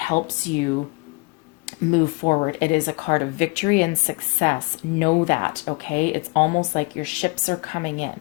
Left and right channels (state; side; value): quieter; right; 28.5 dB